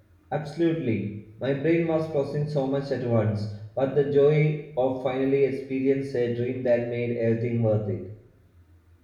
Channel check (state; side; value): identical; both; correlation 1.00